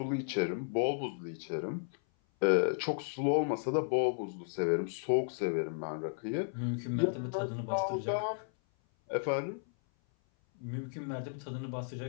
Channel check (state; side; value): silent; right; 55 dB below the other